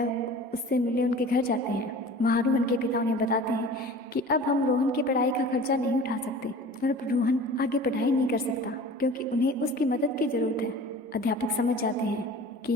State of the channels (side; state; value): both; normal; correlation 0.41